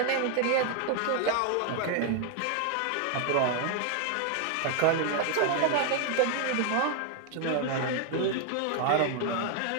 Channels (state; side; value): different; both; correlation 0.00